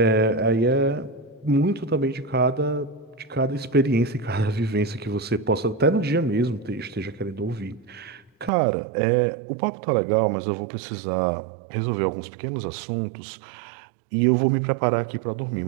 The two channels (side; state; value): left; drops out; at 8.5 s